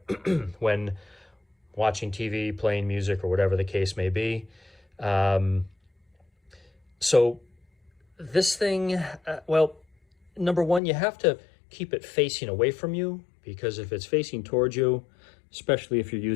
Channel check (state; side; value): drops out; right; at 10.8 s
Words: when watching TV, playing music, or whatever the case may be. So this thing, well, number one, you have to keep it facing away from you, because if it's facing towards you, especially if you're